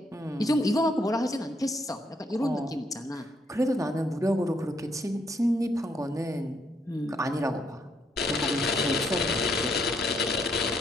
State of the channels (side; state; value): both; normal; correlation 0.74